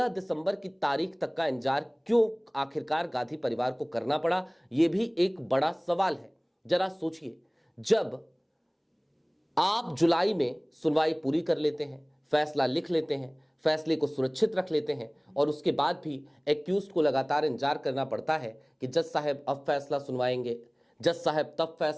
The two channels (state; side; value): identical; both; correlation 1.00